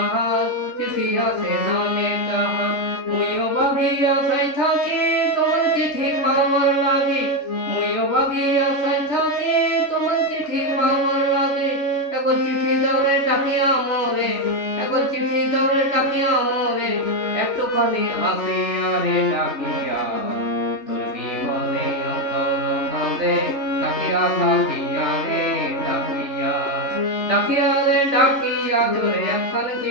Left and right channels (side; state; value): right; late; 3.4 ms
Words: চিঠি আসে নামে তাহার, মুইও ভাবিয়া আশায় থাকি তোমার চিঠি পাবার লাগি, মুইও ভাবিয়া আশায় থাকি তোমার চিঠি পাবার লাগি, একবার চিঠি দাও রে ডাকিয়া মোরে, একবার চিঠি দাও রে ডাকিয়া মোরে, একটুখানি আসিয়া রে ডাকিয়া, তোর বিহনে অন্তর কাঁদে, ডাকিয়া ডাকিয়া রে ডাকিয়া, ডাকিয়া রে ডাকিয়া, তোরে একখান